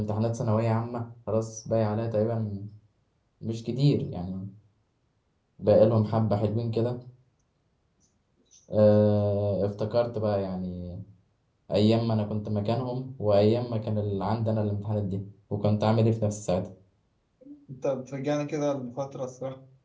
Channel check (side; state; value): both; identical; correlation 1.00